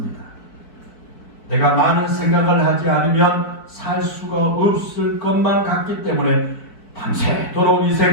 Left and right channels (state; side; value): late; right; 4.6 ms